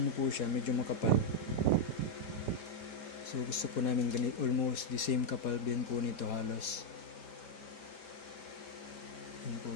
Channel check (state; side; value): late; right; 5.0 ms